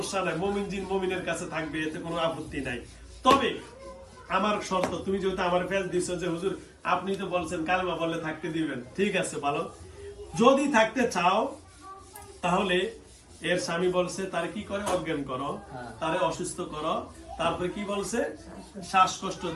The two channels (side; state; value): both; identical; correlation 1.00